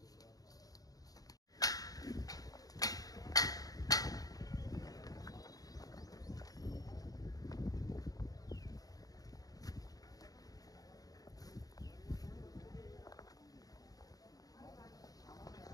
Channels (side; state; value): right; late; 0.18 ms